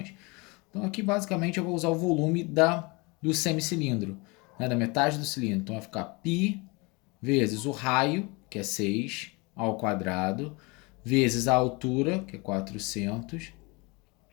Então, aqui basicamente eu vou usar o volume do semicilindro, né, da metade do cilindro. Então, vai ficar π vezes o raio, que é 6, ao quadrado, vezes a altura, que é 400.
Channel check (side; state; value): right; quieter; 27.2 dB